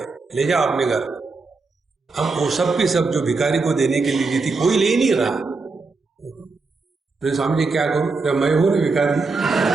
ले जाओ अपने घर। हम वो सब की सब जो भिखारी को देने के लिए दी थी, कोई ले नहीं रहा। तो स्वामी जी क्या करूं, जब मैं हूं ना भिखारी,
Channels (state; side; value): quieter; left; 4.0 dB